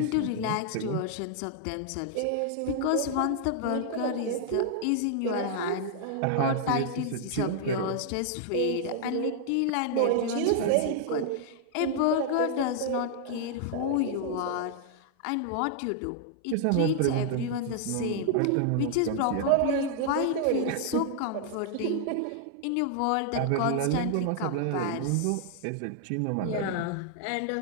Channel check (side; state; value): both; different; correlation -0.01